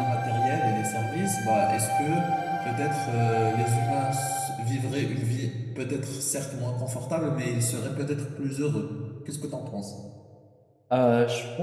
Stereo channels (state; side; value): identical; both; correlation 1.00